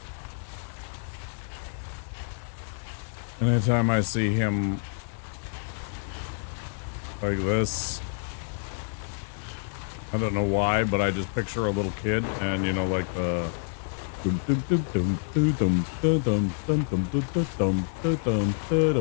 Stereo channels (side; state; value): right; silent; 59 dB below the other